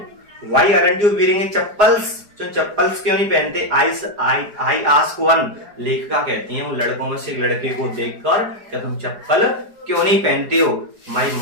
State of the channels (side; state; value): left; late; 4.8 ms